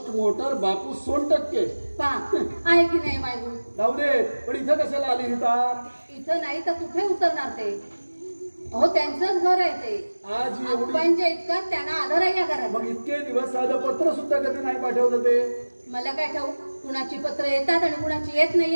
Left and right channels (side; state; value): both; inverted; correlation -1.00